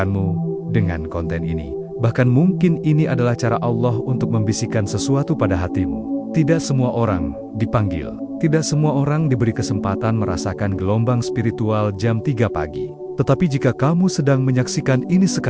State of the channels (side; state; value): both; identical; correlation 1.00